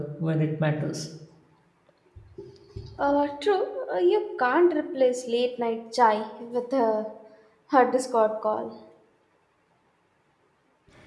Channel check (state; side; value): identical; both; correlation 1.00